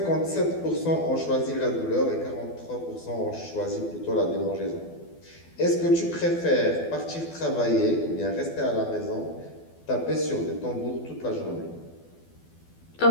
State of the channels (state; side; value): late; right; 12 ms